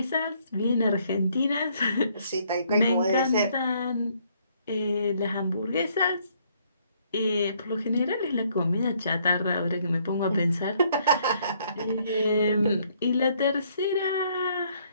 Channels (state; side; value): inverted; both; correlation -0.67